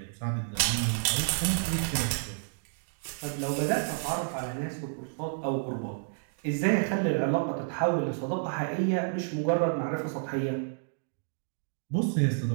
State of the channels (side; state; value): left; silent; digital silence